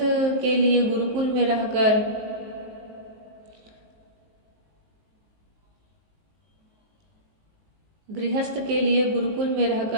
के लिए गुरुकुल में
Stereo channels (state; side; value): late; left; 19 ms